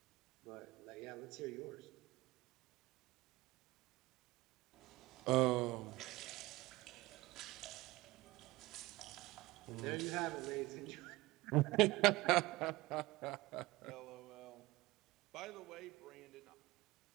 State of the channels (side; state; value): left; quieter; 20.2 dB